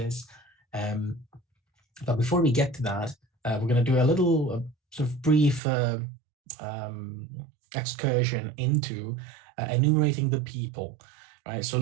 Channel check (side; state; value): left; drops out; at 5.6 s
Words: But before we get to that, we're going to do a little brief excursion into enumerating the people, right? So